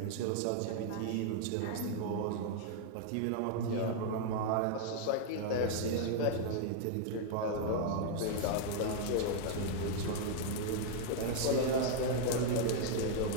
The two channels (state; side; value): different; both; correlation 0.00